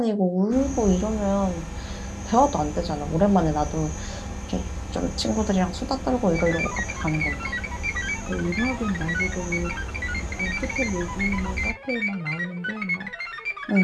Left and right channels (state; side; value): identical; both; correlation 1.00